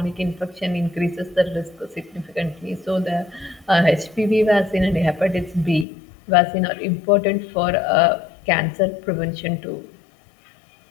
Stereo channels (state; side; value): drops out; right; at 5.9 s